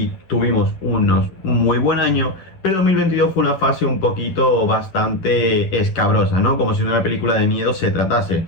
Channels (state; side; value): late; right; 11 ms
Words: tuvimos un muy buen año, pero 2022 fue una fase un poquito bastante escabrosa, ¿no? Como si de una película de miedo se tratase.